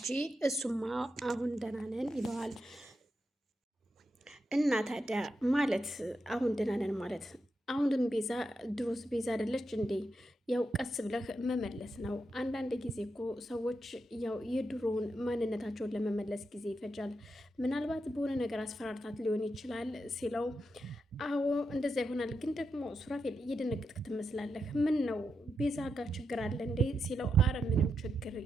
እሱማ አሁን ደህና ነን ይለዋል። እና ታዲያ ማለት አሁን ደህና ነን ማለት አሁንም ቤዛ ድሮስ ቤዛ አይደለች እንዴ? ያው ቀስ ብለህ መመለስ ነው። አንዳንድ ጊዜ እኮ ሰዎች ያው የድሮውን ማንነታቸውን ለመመለስ ጊዜ ይፈጃል። ምናልባት በሆነ ነገር አስፈራርታት ሊሆን ይችላል ሲለው አዎ እንደዛ ይሆናል። ግን ደግሞ ሱራፌል እየደነገጥክ ትመስላለህ። ምን ነው ቤዛ ጋር ችግር አለ እንዴ ሲለው አረ ምንም ችግር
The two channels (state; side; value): normal; both; correlation 0.85